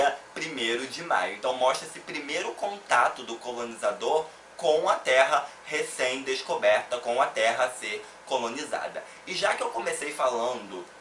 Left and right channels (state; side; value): identical; both; correlation 1.00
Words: 1º de maio. Então mostra esse primeiro contato do colonizador com a terra recém-descoberta, com a terra a ser colonizada. E já que eu comecei falando